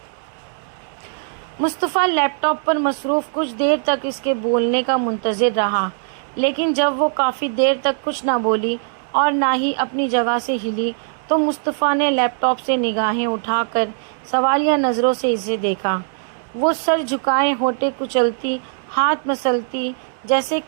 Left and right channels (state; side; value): silent; left; digital silence